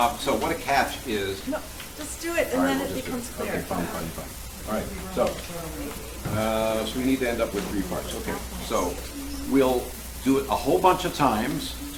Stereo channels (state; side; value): identical; both; correlation 1.00